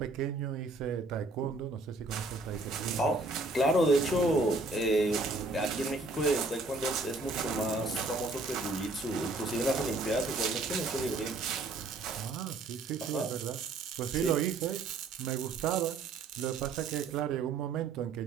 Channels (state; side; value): quieter; left; 3.3 dB